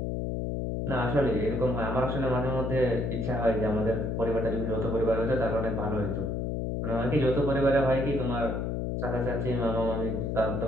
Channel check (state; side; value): noise; left; hum, 1 dB below the sound